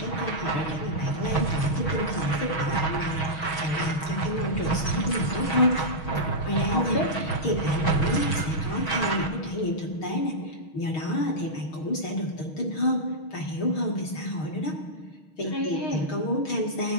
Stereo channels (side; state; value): right; late; 6.3 ms